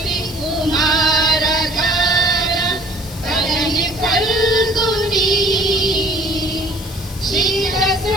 कुमार धार पलनी फल्गुनी शीत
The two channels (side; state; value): left; noise; hiss, 16 dB below the sound